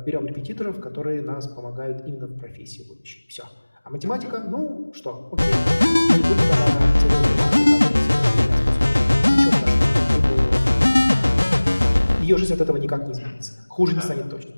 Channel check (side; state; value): both; inverted; correlation -1.00